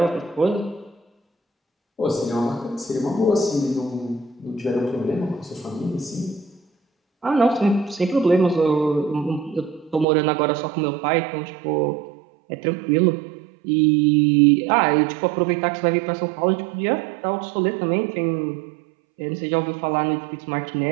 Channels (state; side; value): drops out; left; at 10.1 s